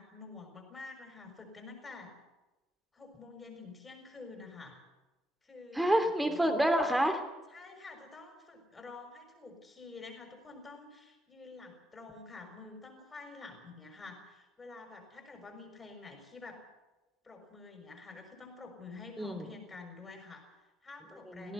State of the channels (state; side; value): normal; both; correlation 0.84